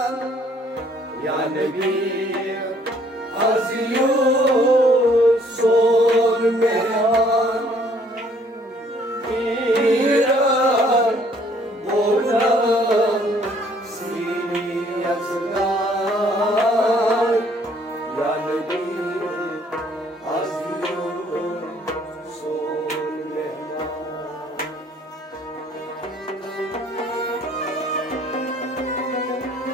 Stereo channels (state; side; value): normal; both; correlation 0.62